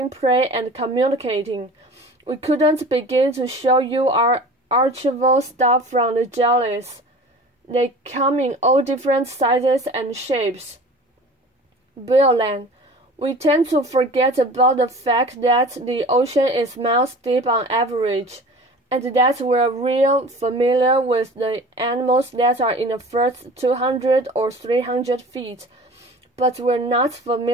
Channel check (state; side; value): normal; both; correlation 0.41